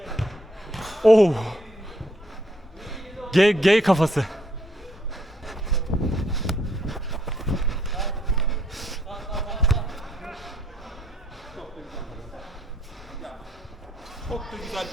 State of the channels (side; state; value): both; normal; correlation 0.70